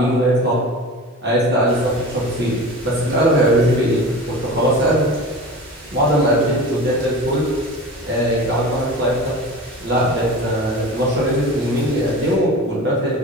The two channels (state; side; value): normal; both; correlation 0.34